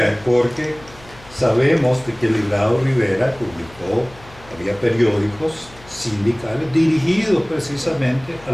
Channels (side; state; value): left; noise; hum, 22 dB below the sound